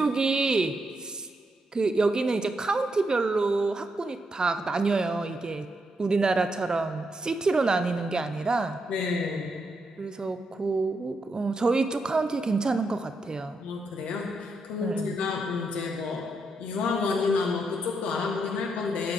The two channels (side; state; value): both; normal; correlation 0.81